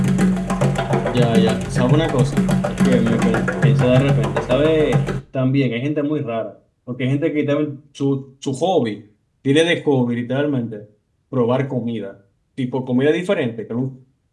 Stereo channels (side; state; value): both; identical; correlation 1.00